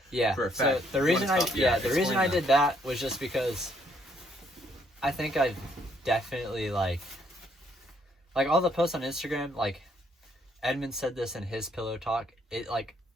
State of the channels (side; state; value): both; normal; correlation 0.69